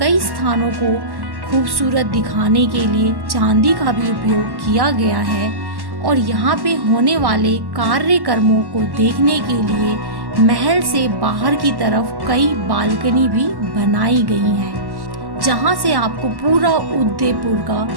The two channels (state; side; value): late; left; 1.1 ms